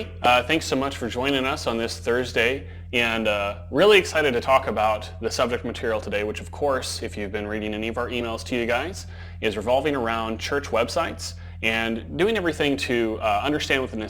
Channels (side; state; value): both; identical; correlation 1.00